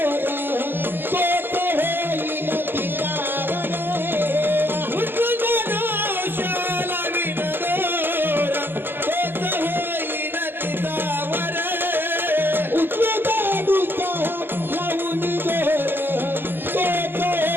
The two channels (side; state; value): left; late; 0.097 ms